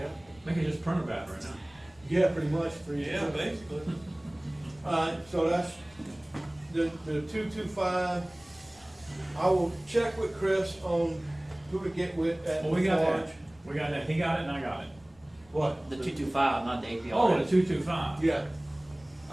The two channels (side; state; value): left; noise; rumble, 28 dB below the sound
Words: They can just print a battery now. Yeah, pretty much for you. Yeah, basically. So that's the 225. I will check with Chris on who to get with at Well, we got Forge. that. We got that. He got it and I got it. What? The 225, not the APR. Oh, the 225. Yeah.